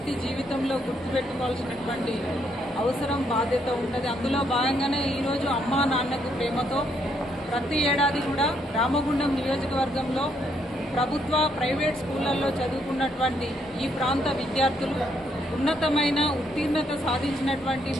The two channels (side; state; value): both; normal; correlation 0.73